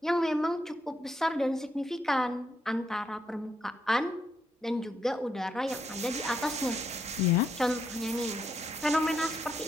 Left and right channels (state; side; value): normal; both; correlation 0.78